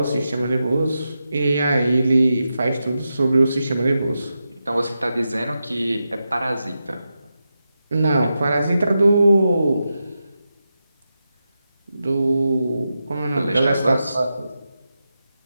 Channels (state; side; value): inverted; both; correlation -0.89